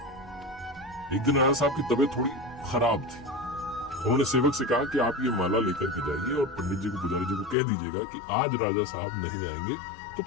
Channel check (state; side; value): drops out; right; at 7.6 s